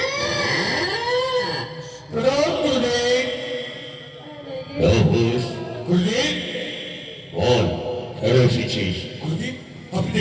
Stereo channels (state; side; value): identical; both; correlation 1.00